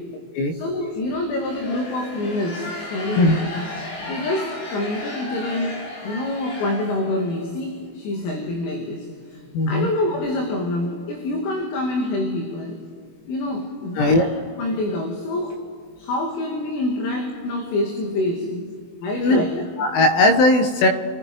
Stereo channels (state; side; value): late; right; 24 ms